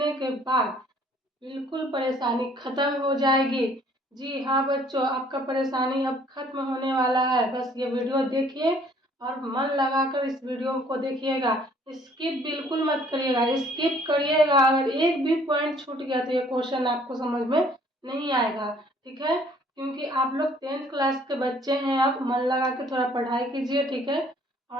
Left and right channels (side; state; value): both; normal; correlation 0.59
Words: के बाद बिल्कुल परेशानी खत्म हो जाएगी। जी हाँ बच्चों, आपका परेशानी अब खत्म होने वाला है। बस ये वीडियो देखिए और मन लगाकर इस वीडियो को देखिएगा। स्किप बिल्कुल मत करिएगा। स्किप करिएगा अगर एक भी पॉइंट छूट गया तो ये क्वेश्चन आपको समझ में नहीं आएगा। ठीक है, क्योंकि आप लोग 10th क्लास के बच्चे हैं। आप मन लगा के थोड़ा पढ़ाई कीजिए, ठीक है,